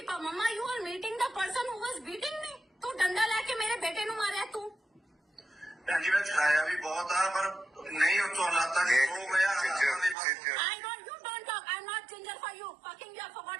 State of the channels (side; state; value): left; drops out; at 10.2 s